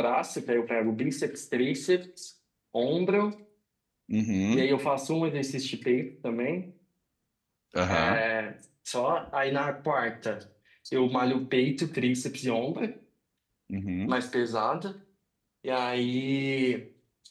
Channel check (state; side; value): identical; both; correlation 1.00